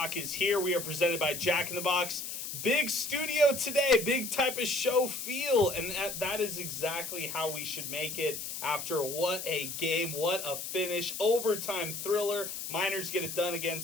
is here. We are presented by Jack in the Box. Big studio today, big type of show feel, and that is exactly how we should make it after what a game, what a finish, overtime thriller. Miners get it done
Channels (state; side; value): noise; left; hiss, 6 dB below the sound